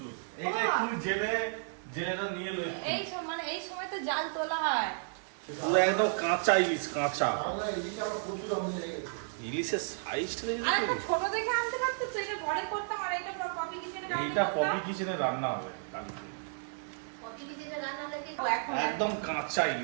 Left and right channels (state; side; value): silent; left; digital silence